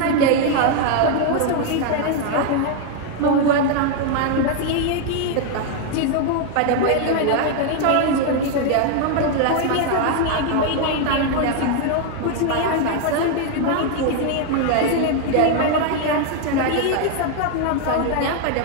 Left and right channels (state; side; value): different; both; correlation 0.00